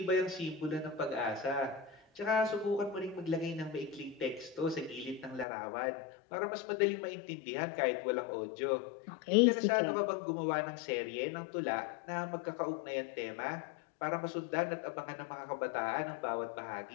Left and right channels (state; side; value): drops out; right; at 5.5 s